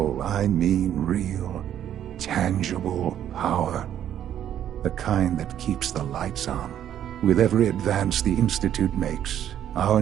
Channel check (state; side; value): quieter; left; 10.6 dB